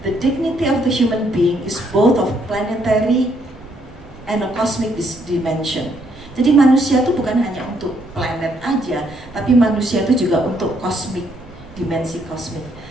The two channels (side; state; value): right; noise; rumble, 21 dB below the sound